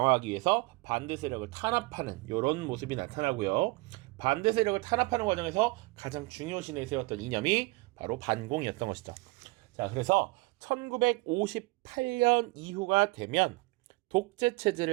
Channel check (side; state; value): left; quieter; 23.9 dB